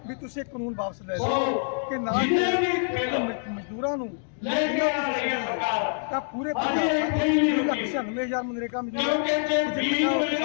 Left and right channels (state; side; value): silent; right; digital silence